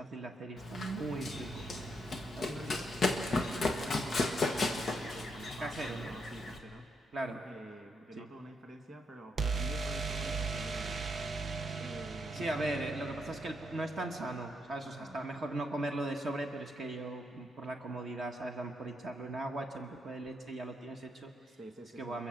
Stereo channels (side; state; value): both; normal; correlation 0.78